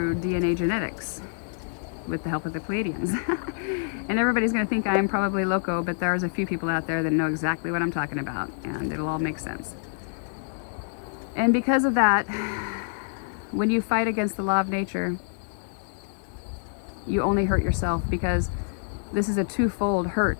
DNA genetics with the help of the Pleiadians. And everybody's going to think I'm probably loco, but there's a few people out there that know exactly what I'm talking about, and it'll all make sense. And because of that, when you fight against the law of nature, you only hurt yourself, because this is a twofold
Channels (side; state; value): right; silent; digital silence